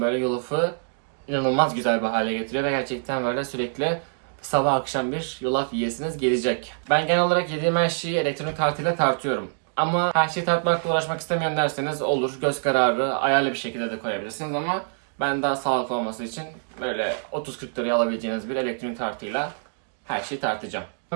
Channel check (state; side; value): silent; left; digital silence